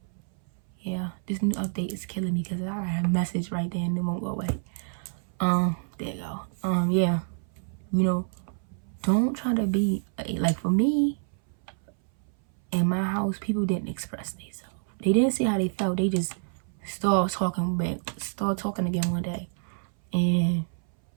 yeah, this new update is killing me because I have a message right there and it won't go away. There you go. Yeah, you know, don't try to be like, for me in my house, people didn't express themselves. They didn't say how they felt. They just start talking again one day. And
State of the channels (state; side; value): silent; left; 59 dB below the other